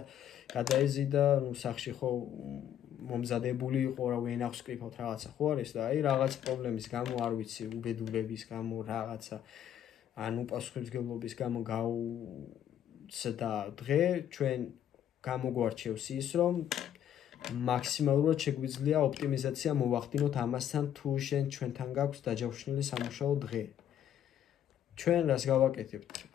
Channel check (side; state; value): right; quieter; 10.3 dB